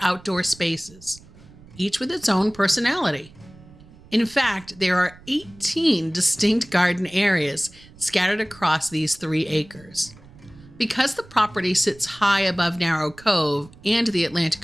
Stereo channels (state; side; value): noise; right; rumble, 23 dB below the sound